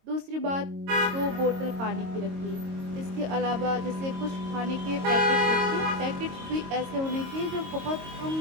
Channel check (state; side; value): late; left; 22 ms